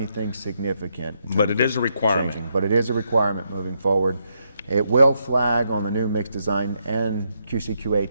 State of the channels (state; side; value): inverted; both; correlation -0.79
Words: significant. in But terms it is of a requirement. changing, but it is a requirement moving forward. It will flag on the new mix design and QCQA